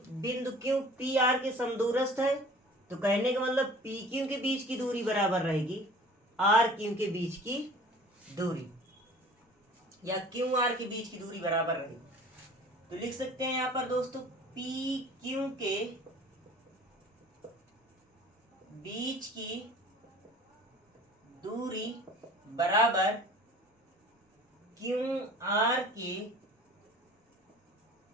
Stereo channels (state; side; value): normal; both; correlation 0.46